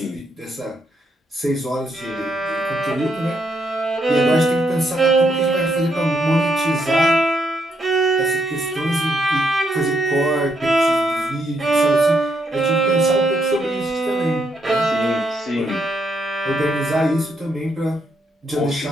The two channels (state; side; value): normal; both; correlation 0.76